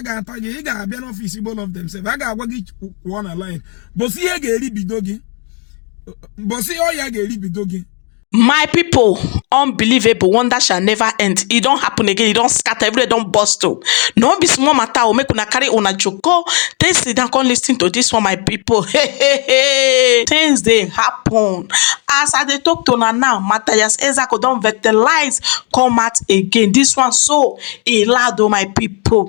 ga-ata gị, ị ga-abịa n'ọfịs both of them sef. A ga-agwa gị kwụọ na line. Bosi ihe ga-eri bido gị. Bosi ọya ga-eri bido gị. My people, unbelievable, wonder shall never end. It don't happen again. It don't scatter. Everywhere don't burst. No be small matter. O make una carry una joko. Then sit down, come listen to this one, my people. Hey. Things they happen. As I dey talk to una now, Mathias Ezeaku don fertilize come out again. This one so e loud, oh my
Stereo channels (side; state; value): right; quieter; 35.8 dB